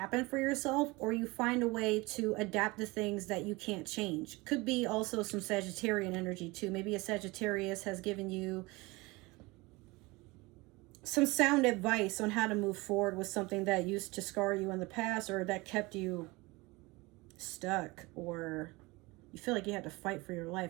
for yourself, or you find a way to adapt to things that you can't change. Could be also some Sagittarian energy too. Maybe a Sagittarius has given you some sound advice on how to move forward with something that used to scar you in the past, or that kept you stuck, or you feel like you had to fight for your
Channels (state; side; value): quieter; left; 23.5 dB